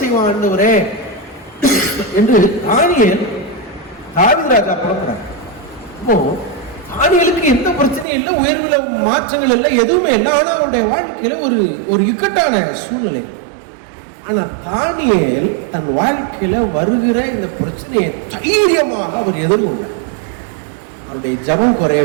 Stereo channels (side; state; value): left; drops out; at 8.1 s